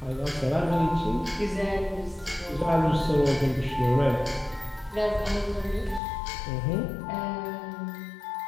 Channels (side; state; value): right; drops out; at 6.0 s